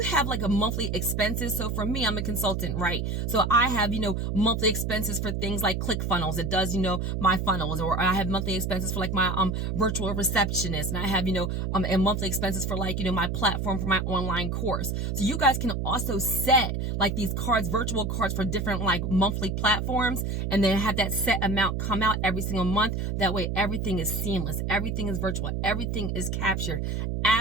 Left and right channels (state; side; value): noise; right; hum, 1 dB below the sound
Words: have like a monthly expenses. So for me, I'm a consultant, right? So I have, monthly expenses for things like ClickFunnels. It does, my funnels, or I have monthly expenses for like my virtual receptionist. And I have, and monthly expenses for like, my platform for my online course. So you guys can also set like these cards, virtual cards for different like monthly platforms, and then have that set amount come out every single month. That way everything is seamless. Everything is virtual. Everything is captured.